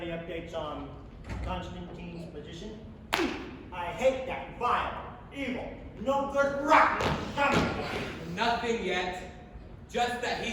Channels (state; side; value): identical; both; correlation 1.00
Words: updates on Constantine's position? I hate that vile, evil, no good, rotten son of a bitch. Nothing yet. Just that